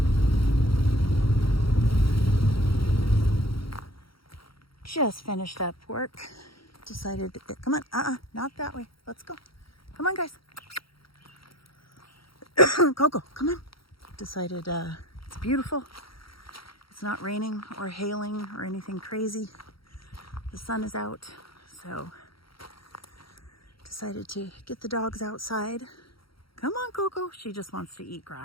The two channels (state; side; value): late; right; 0.75 ms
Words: Just finished up work. Decided to get, come on, not that way. Let's go. Come on, guys. Coco, come on. Decided it's beautiful. It's not raining or hailing or anything crazy. The sun is out, so decided to get the dogs outside. Come on, Coco. She just wants to eat